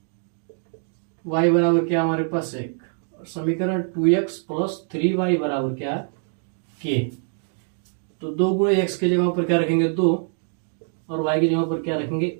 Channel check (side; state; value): left; silent; 63 dB below the other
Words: y बराबर क्या हमारे पास 1, और समीकरण 2x प्लस 3y बराबर क्या है k। तो 2 गुणे x की जगह पर क्या रखेंगे 2, और y की जगह पर क्या रखेंगे